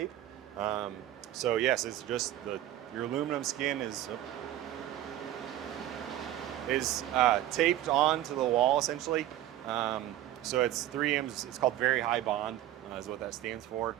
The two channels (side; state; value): left; quieter; 13.2 dB